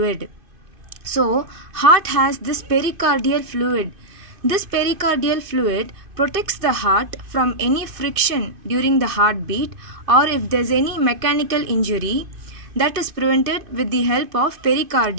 So heart has this pericardial fluid. This pericardial fluid protects the heart from any friction during the heartbeat, or if there is any mechanical injury, that is prevented with the help of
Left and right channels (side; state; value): left; late; 2.5 ms